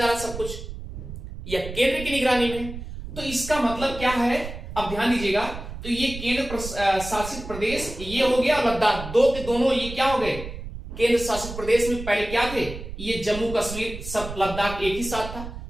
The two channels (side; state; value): right; noise; rumble, 10 dB below the sound